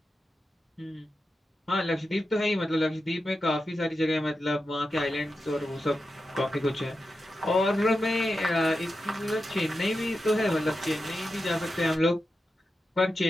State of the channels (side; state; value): both; normal; correlation 0.90